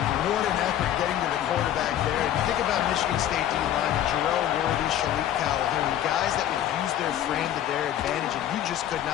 What an effort getting to the quarterback there. And you think about Michigan State D-line, Jarrell Worthy, Shalik Calhoun, guys that would use their frame to their advantage, and you just could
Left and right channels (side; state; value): right; quieter; 11.3 dB